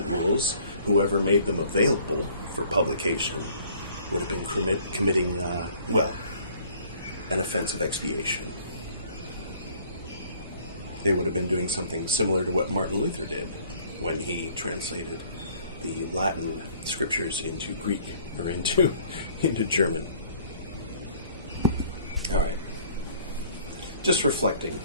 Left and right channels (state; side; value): inverted; both; correlation -0.56